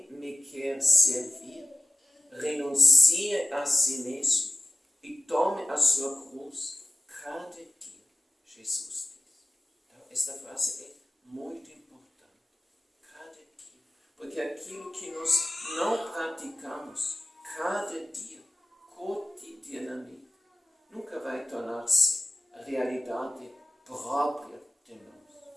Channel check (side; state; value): both; normal; correlation 0.96